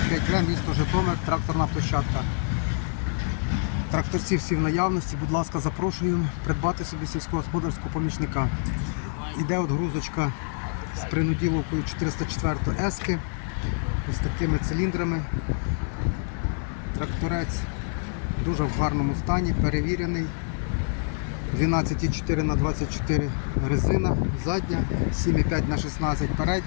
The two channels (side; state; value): right; silent; 61 dB below the other